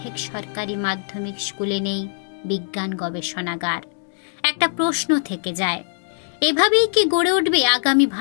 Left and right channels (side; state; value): right; silent; digital silence